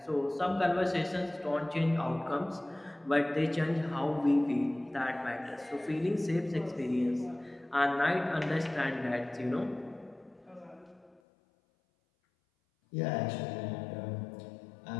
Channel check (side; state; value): right; drops out; at 11.2 s